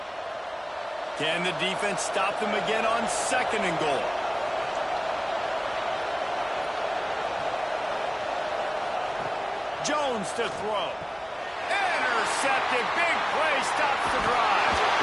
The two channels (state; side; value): identical; both; correlation 1.00